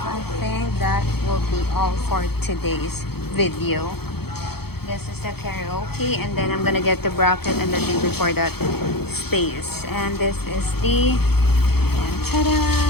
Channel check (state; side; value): late; right; 0.96 ms